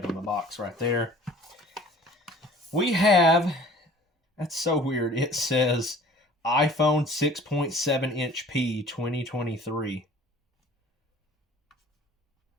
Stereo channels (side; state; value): both; normal; correlation 0.49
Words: on the box right there. We have, that's so weird. It says iPhone 6.7-inch P 2023.